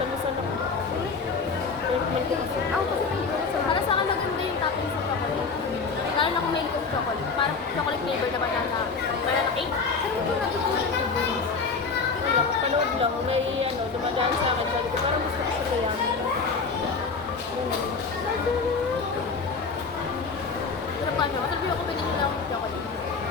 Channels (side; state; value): right; quieter; 4.8 dB